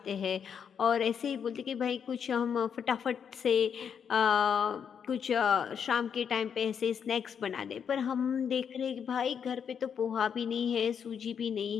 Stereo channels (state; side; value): quieter; right; 7.4 dB